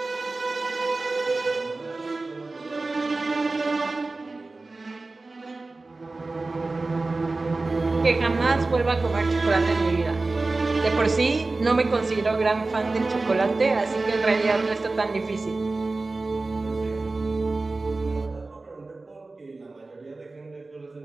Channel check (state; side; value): quieter; left; 3.4 dB